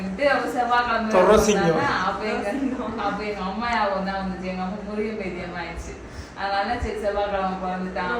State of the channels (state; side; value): identical; both; correlation 1.00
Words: அவர் செவ்வாய்க்கிழமை அப்ப எங்க அம்மா யாவும் தான் வந்துச்சு. எங்க அம்மா முருகன் பேத்தியம் ஆயிடுச்சு. அதனால சரி செவ்வாய்க்கிழமை பிறந்துட்டான்.